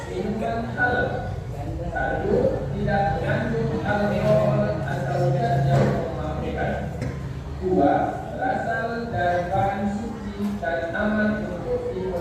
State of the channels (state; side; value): identical; both; correlation 1.00